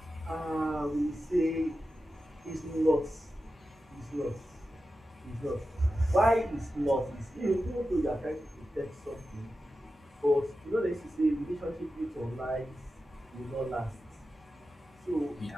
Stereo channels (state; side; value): normal; both; correlation 0.92